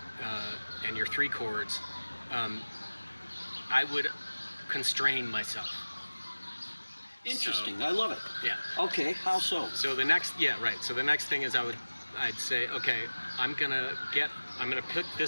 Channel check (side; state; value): both; inverted; correlation -1.00